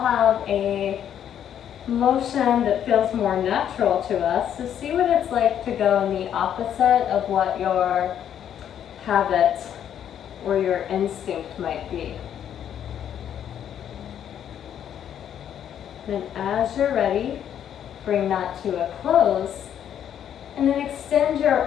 a motion that feels more natural to us. So see what it's like to go in the opposite of what your habit or your instinct might be. Then as you're ready, bring that to a close, and then extend your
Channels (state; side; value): quieter; right; 9.6 dB